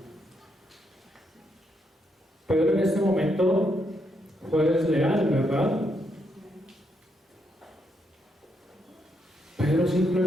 Pedro en este momento fue desleal, ¿verdad? Pedro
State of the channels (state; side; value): normal; both; correlation 0.78